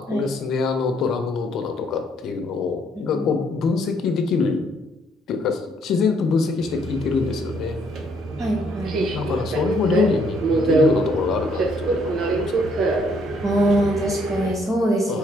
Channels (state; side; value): normal; both; correlation 0.68